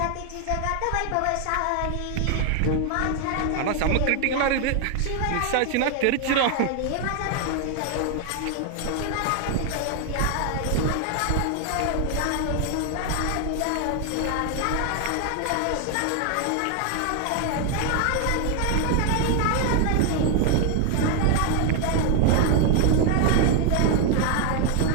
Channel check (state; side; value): different; both; correlation 0.00